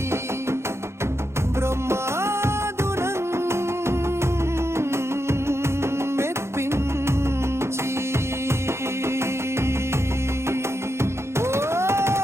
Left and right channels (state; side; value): late; left; 0.13 ms